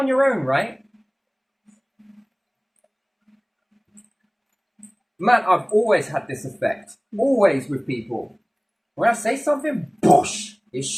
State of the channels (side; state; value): both; identical; correlation 1.00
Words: your own, right? Man, I've always had this effect. Always with people. When I say something, boosh, it